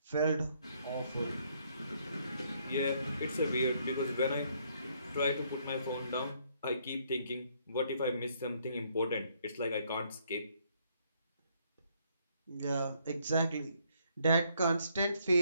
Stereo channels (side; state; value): both; inverted; correlation -0.69